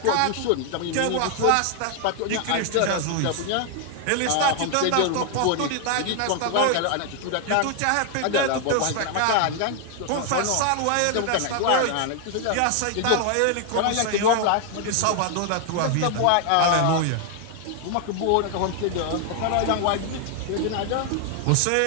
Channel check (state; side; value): different; both; correlation 0.00